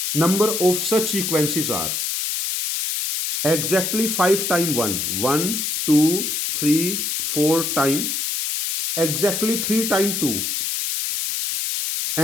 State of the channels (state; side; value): noise; left; hiss, 1 dB below the sound